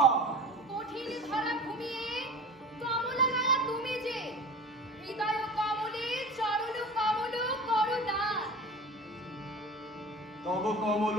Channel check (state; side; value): normal; both; correlation 0.36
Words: কঠিন ধরা ঘুমিয়ে কমলা গায়া তুমি যে, হৃদয় কমলে চরণ কমল করো দান। তব কমল